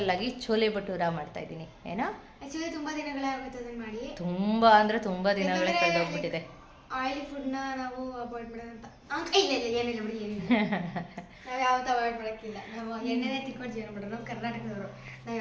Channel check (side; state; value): both; identical; correlation 1.00